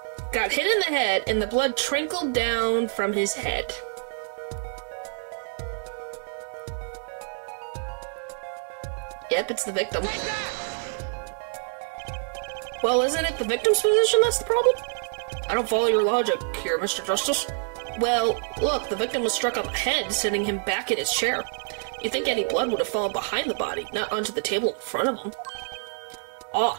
got hit in the head and the blood trickled down from his head. Yep, it's the victim. Well, isn't it the victim's position that's the problem? I don't follow your logic here, Mr. Justice. Well, look, the victim was struck on the head, sending him back in his chair. You'd think any blood would have fallen behind the body, not onto the table in front of him. Ah,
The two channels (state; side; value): silent; left; 60 dB below the other